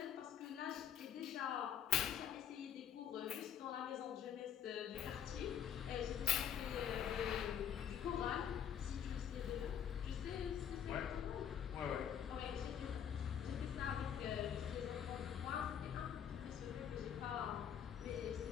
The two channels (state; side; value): quieter; right; 8.6 dB